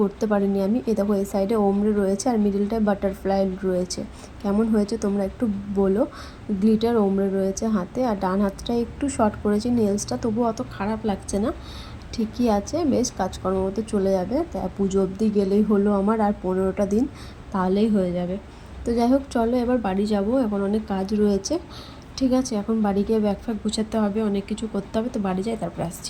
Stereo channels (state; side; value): identical; both; correlation 1.00